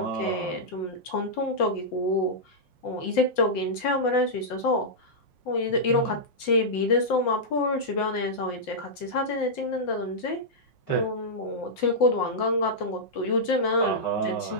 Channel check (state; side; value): late; right; 5.6 ms